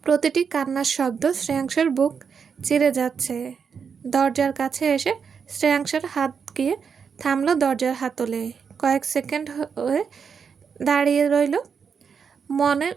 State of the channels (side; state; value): left; quieter; 6.4 dB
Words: প্রতিটি কান্নার শব্দ শ্রেয়াংসের বুক চিরে যাচ্ছে। দরজার কাছে এসে শ্রেয়াংসের হাত গিয়ে থামলো দরজার হাতলে। কয়েক সেকেন্ড হয়ে দাঁড়িয়ে রইল। মনের